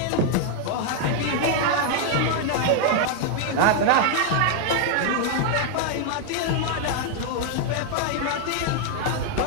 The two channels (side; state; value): both; different; correlation 0.00